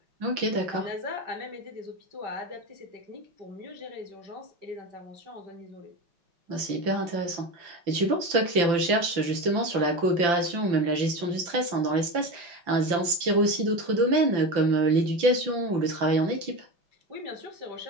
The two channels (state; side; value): late; left; 5.9 ms